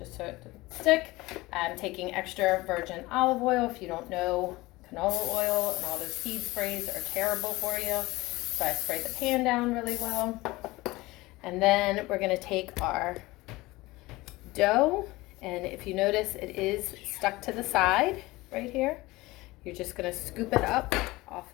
so it doesn't stick, I'm taking extra virgin olive oil. If you don't know, canola oil and all those seed sprays are terrible for you. So I spray the pan down really well. And then we're gonna take our dough, and if you notice, it is stuck to the side right here. You're just gonna scoop it up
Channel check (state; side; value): quieter; right; 20.4 dB